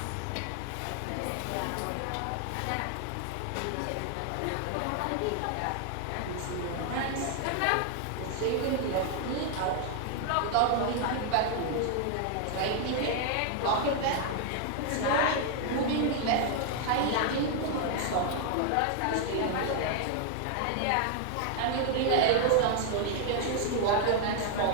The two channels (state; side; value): different; both; correlation 0.00